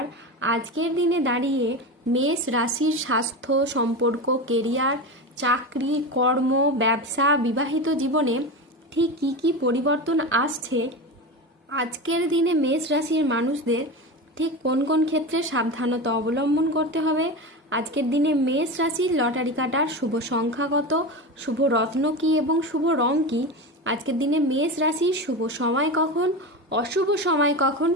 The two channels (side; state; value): both; normal; correlation 0.23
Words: আজকের দিনে দাঁড়িয়ে মেষ রাশির স্বাস্থ্য, সম্পর্ক, কেরিয়ার, চাকরি, কর্ম, ব্যবসা, বিবাহিত জীবনে ঠিক কী কী পরিবর্তন আসছে, আজকের দিনে মেষ রাশির মানুষদের ঠিক কোন কোন ক্ষেত্রে সাবধানতা অবলম্বন করতে হবে, আজকের দিনে মেষ রাশির লটারি কাটার শুভ সংখ্যা কত, শুভ রত্ন কী এবং শুভ রং কী, আজকের দিনে মেষ রাশির শুভ সময় কখন, অশুভ সময় কখন,